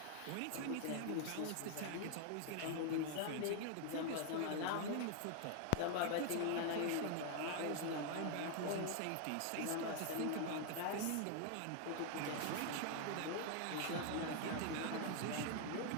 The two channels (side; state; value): both; different; correlation 0.00